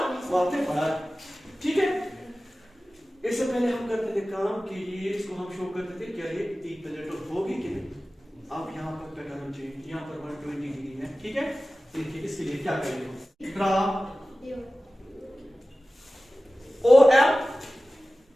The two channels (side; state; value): both; normal; correlation 0.96